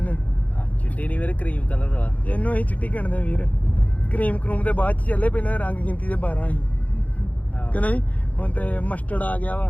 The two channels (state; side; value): late; right; 0.071 ms